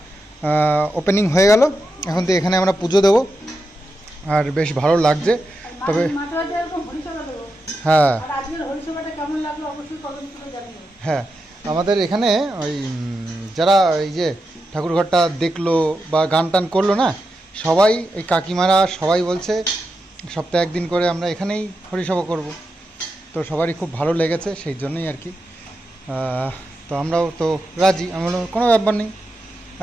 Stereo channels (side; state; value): both; normal; correlation 0.88